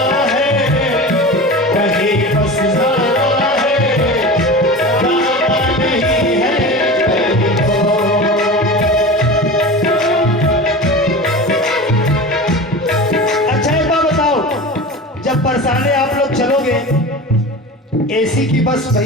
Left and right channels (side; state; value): both; normal; correlation 0.31